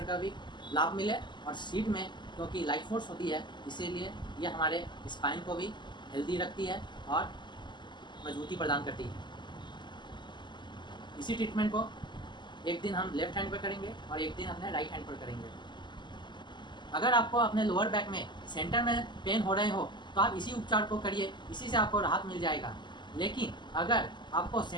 का भी लाभ मिले। और सीट में क्योंकि लाइट फोर्स होती है, इसीलिए ये हमारे स्पाइन को भी हेल्दी रखती है और मजबूती प्रदान करती है। इसी ट्रीटमेंट को एक दिन हम लेफ्ट हैंड पर करेंगे और एक दिन अपने राइट हैंड पर करेंगे। अगर आपको अपने लोअर बैक में सेंटर में पेन हो रहे हो तो आप इसी उपचार को करिए, इसी से आपको राहत मिल जाएगा। लेकिन अगर आपको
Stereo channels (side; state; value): right; late; 0.22 ms